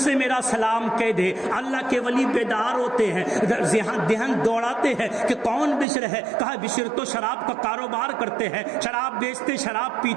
سے میرا سلام کہہ دے. اللہ کے ولی بیدار ہوتے ہیں, دہن دوڑاتے ہیں کہ کون بشر ہے. کہا بشر تو شراب کا کاروبار کرتے ہیں, شراب بیچتے, شراب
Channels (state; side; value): drops out; left; at 5.9 s